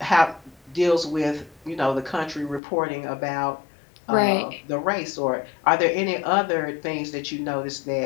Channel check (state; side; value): drops out; right; at 2.6 s